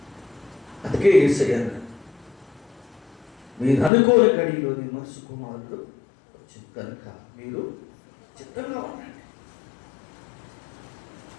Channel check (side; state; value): right; drops out; at 3.9 s